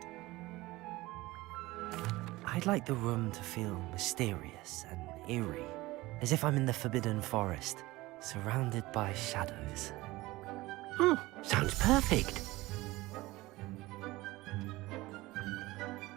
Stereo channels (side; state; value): left; quieter; 19.5 dB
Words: I'd like the room to feel mysterious and eerie, as if I'm in the Forbidden Forest, surrounded by shadows. Oh, sounds perfect.